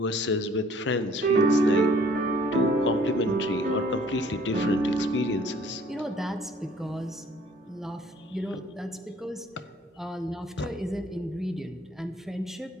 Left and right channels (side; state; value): both; normal; correlation 0.57